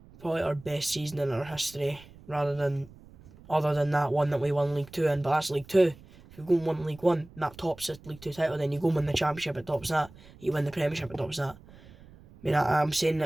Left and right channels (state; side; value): noise; right; rumble, 22 dB below the sound